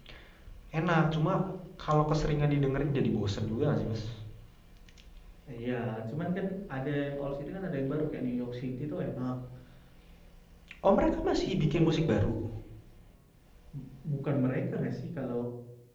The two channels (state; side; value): identical; both; correlation 1.00